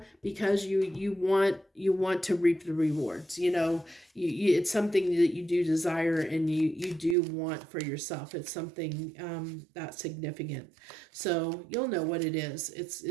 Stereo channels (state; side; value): drops out; left; at 7.2 s